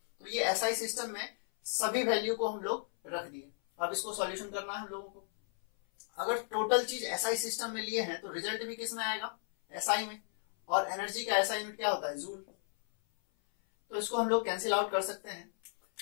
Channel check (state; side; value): silent; right; 55 dB below the other